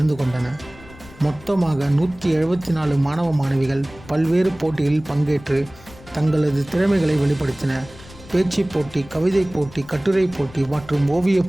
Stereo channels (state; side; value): noise; left; rumble, 20 dB below the sound